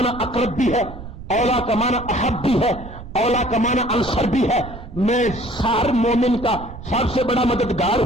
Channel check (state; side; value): noise; right; rumble, 13 dB below the sound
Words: اقرب بھی ہے، اولا کا معنی احب بھی ہے، اولا کا معنی انصر بھی ہے. میں ہر مومن کا سب سے بڑا مددگار